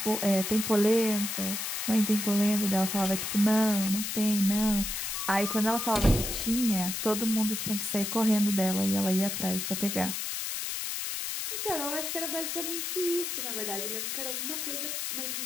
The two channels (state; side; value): noise; left; hiss, 3 dB below the sound